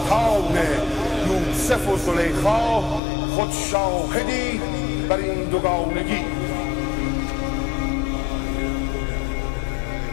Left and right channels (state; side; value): drops out; right; at 3.0 s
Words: یوسف و زلیخا خود شاهدی بر این دوگانگی.